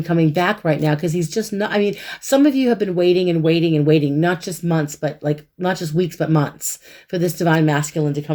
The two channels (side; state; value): both; identical; correlation 1.00